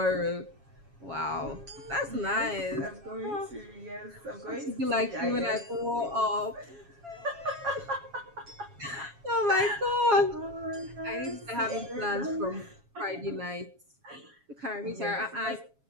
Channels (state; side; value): late; left; 7.3 ms